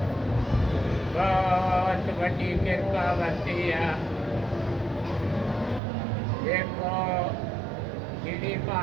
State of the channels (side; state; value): left; drops out; at 5.8 s